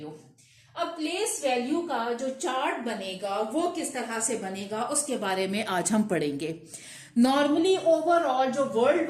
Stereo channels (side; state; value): both; identical; correlation 1.00